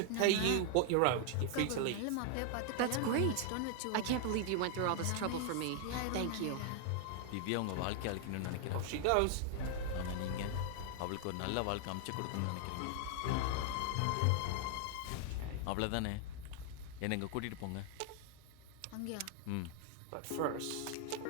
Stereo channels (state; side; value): different; both; correlation 0.00